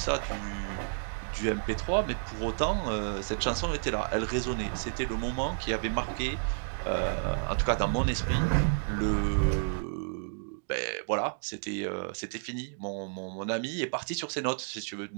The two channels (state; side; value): silent; left; digital silence